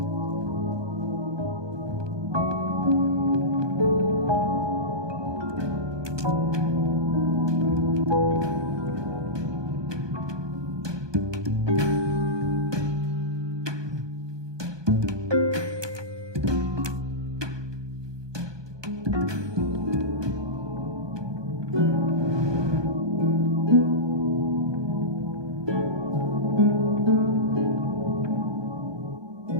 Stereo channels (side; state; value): left; late; 1.2 ms